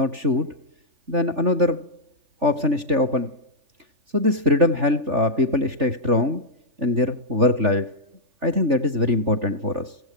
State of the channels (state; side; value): late; left; 3.4 ms